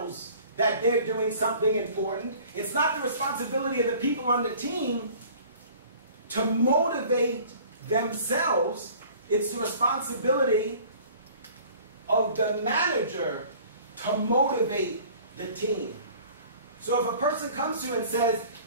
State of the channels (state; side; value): inverted; both; correlation -0.49